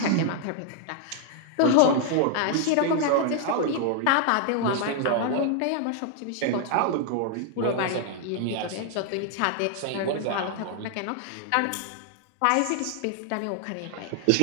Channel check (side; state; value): both; different; correlation 0.00